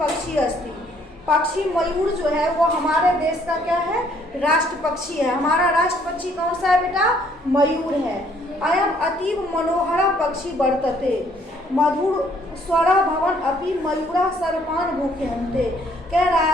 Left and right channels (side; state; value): both; normal; correlation 0.64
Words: अस्ति। पक्षी मयूर जो है वो हमारे देश का क्या है, राष्ट्र पक्षी है। हमारा राष्ट्र पक्षी कौन सा है बेटा, मयूर है। अयम अतीव मनोहरा पक्षी वर्तते मधुर स्वरा भवन अपि मयूरा सर्पान भूख्यन्ते। कह रहा